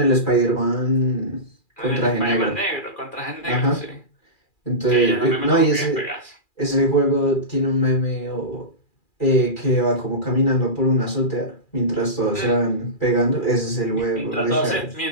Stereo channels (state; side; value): late; right; 2.4 ms